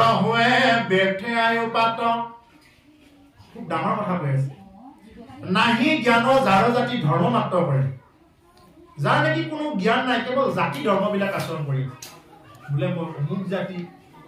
হৈ ব্যৰ্থে আয়ুপাত। খুব ডাঙৰ কথা কৈ আছে, নাহি জ্ঞান যাৰ জাতি ধৰ্ম মাত্ৰ কৰে, যাৰ নেকি কোনো জ্ঞান নাই, কেৱল জাতি ধৰ্মবিলাক আচৰণ কৰি বোলে মই অমুক জাতি,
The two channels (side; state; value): both; identical; correlation 1.00